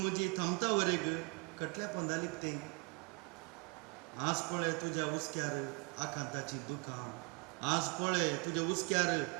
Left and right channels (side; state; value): left; quieter; 32.2 dB